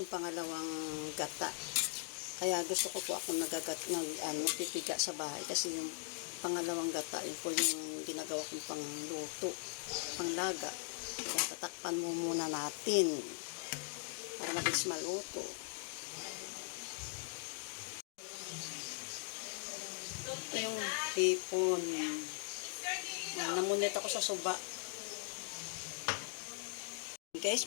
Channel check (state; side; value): silent; right; 51 dB below the other